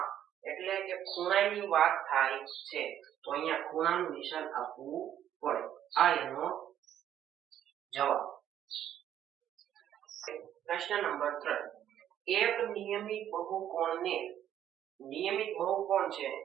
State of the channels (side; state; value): left; quieter; 10.8 dB